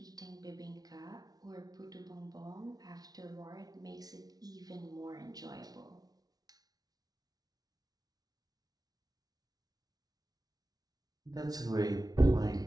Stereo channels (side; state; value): left; late; 0.19 ms